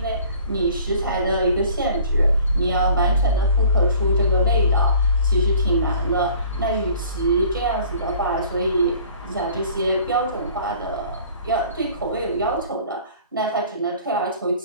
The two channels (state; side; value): inverted; both; correlation -0.51